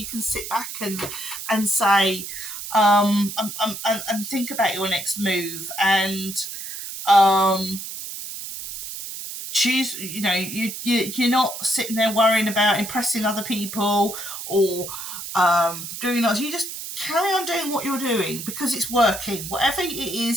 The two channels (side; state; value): right; noise; hiss, 8 dB below the sound